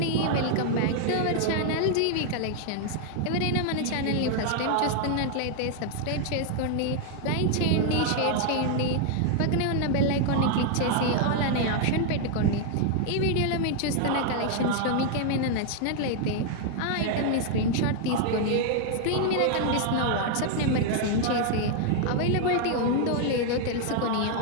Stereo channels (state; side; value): different; both; correlation 0.00